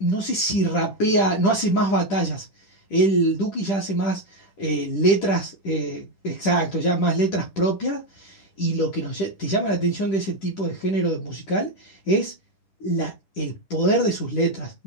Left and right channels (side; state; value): right; late; 10 ms